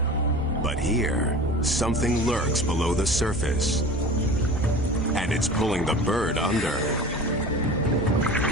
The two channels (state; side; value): normal; both; correlation 0.37